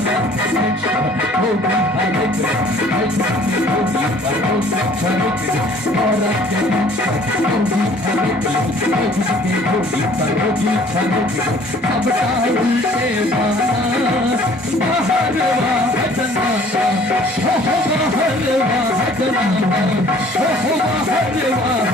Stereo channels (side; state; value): both; normal; correlation 0.54